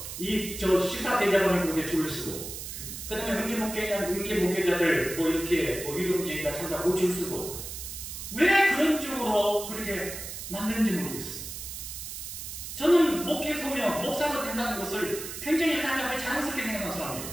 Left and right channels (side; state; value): right; noise; hiss, 8 dB below the sound